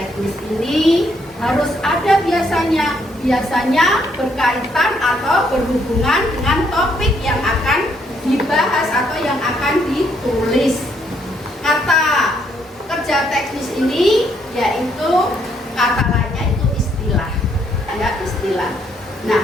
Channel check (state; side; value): normal; both; correlation 0.72